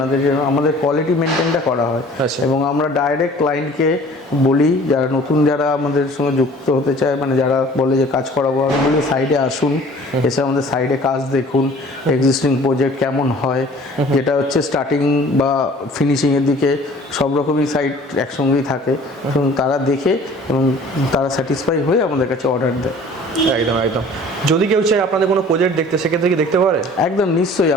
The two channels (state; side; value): normal; both; correlation 0.49